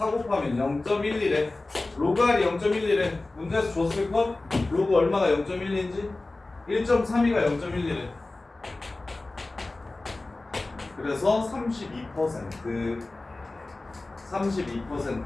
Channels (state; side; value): quieter; right; 3.1 dB